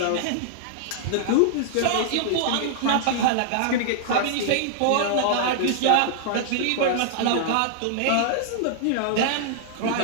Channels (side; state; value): both; different; correlation -0.01